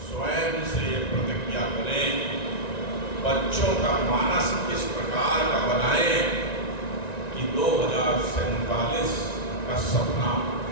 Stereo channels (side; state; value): right; late; 1.9 ms